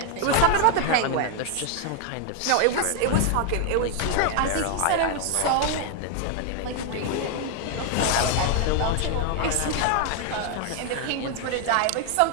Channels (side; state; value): both; different; correlation 0.00